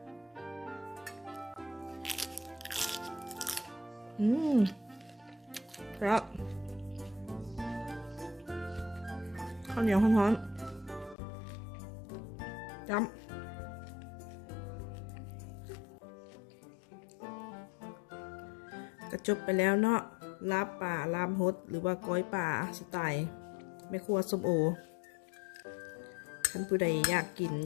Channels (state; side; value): drops out; right; at 11.2 s